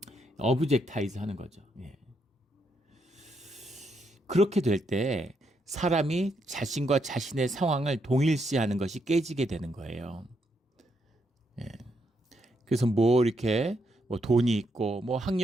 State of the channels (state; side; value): normal; both; correlation 0.78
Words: 어브젝타이즈 하는 거죠. 그렇게 될 때 사람이 자신과 자신의 상황을 동일시하는 것이 깨지게 되는 거예요. 그래서 이렇게 돈이 있고